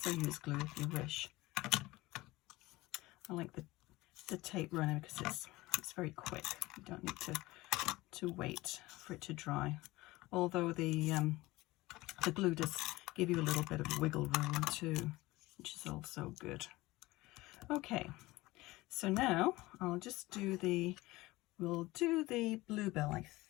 use glue if you wish. I like the tape runner because it's very quick. You don't need to wait for it to dry. Although the glue does give you a little bit of wiggle room too, which is also good. Okay, so now I'll just we'll do the bluebell, I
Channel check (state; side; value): quieter; right; 19.7 dB